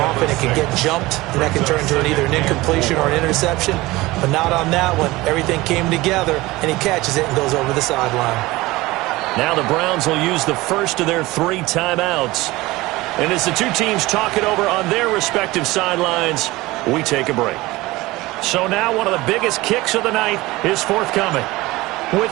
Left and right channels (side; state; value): left; quieter; 19.9 dB